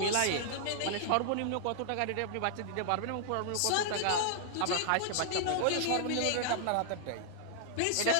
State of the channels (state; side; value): different; both; correlation 0.00